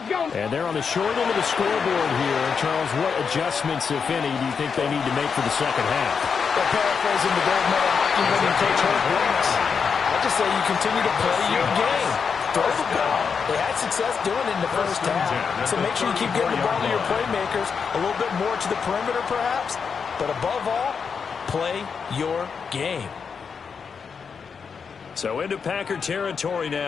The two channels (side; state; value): right; quieter; 6.0 dB